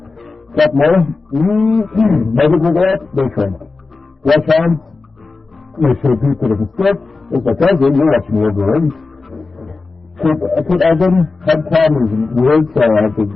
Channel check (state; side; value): quieter; right; 3.9 dB